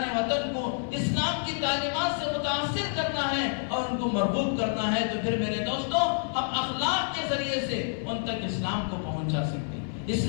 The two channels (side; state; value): right; silent; digital silence